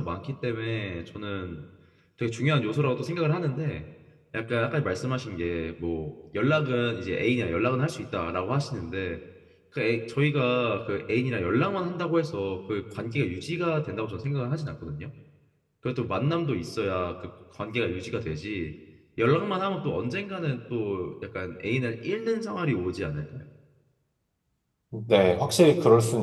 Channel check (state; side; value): identical; both; correlation 1.00